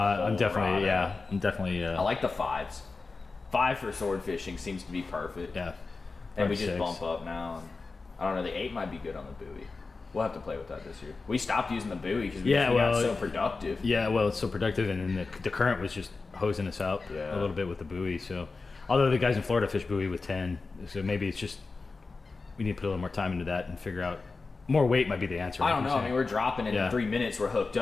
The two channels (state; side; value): quieter; right; 4.0 dB